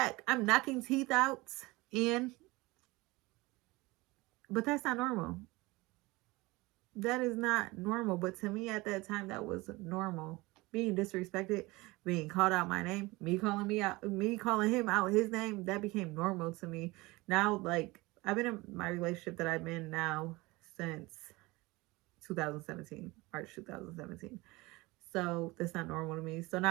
I'm knocking teeth out in. But that's not normal. That is not normal. But to me at that time, that was normal. being disrespected, being called out my name, me calling him out his name, that became normal to me. Now, like, I've been in my relationship that I've been now since 2017, March 2017. So that's not normal to me. So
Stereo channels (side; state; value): left; quieter; 22.1 dB